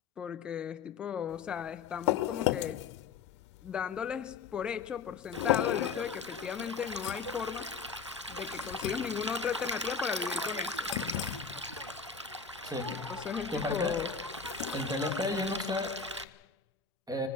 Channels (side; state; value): right; quieter; 5.5 dB